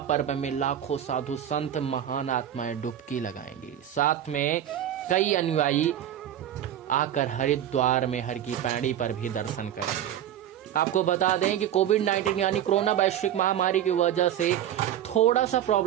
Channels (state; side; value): quieter; left; 10.8 dB